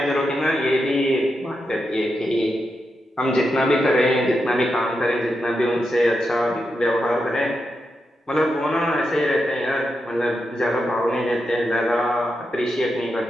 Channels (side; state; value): both; normal; correlation 0.86